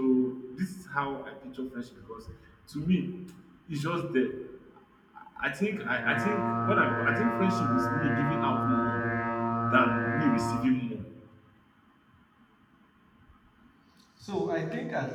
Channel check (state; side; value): identical; both; correlation 1.00